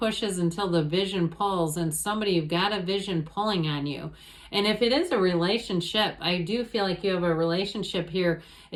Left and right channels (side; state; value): both; identical; correlation 1.00